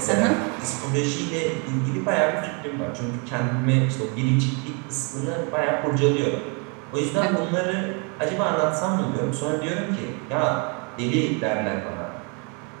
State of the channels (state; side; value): quieter; left; 34.9 dB